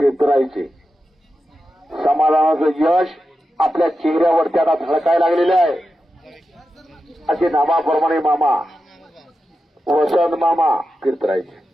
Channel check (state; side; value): normal; both; correlation 0.90